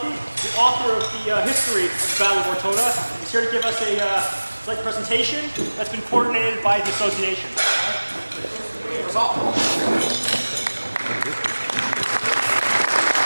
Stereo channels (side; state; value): both; inverted; correlation -1.00